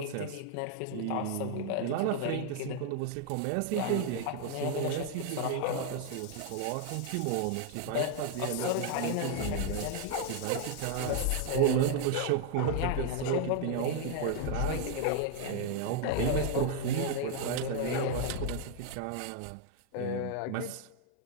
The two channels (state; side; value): different; both; correlation 0.00